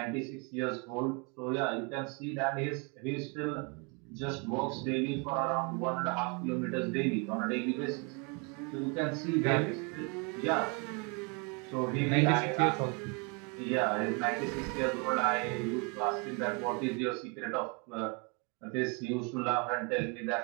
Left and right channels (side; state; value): left; quieter; 33.1 dB